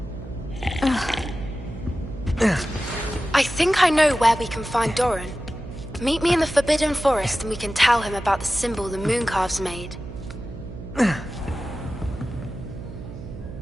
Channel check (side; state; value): right; noise; hum, 12 dB below the sound